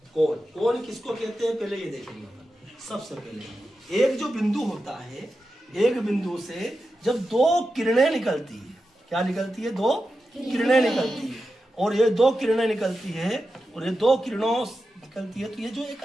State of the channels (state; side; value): normal; both; correlation 0.90